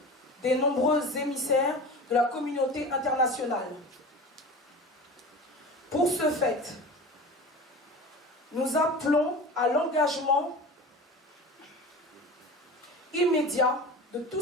des nombreux émissaires de la communauté internationale. Pour ce fait, nous appelons à l'engagement immédiat de tout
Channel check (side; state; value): both; normal; correlation 0.34